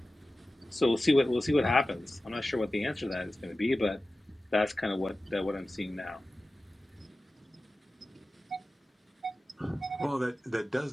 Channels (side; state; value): both; normal; correlation 0.95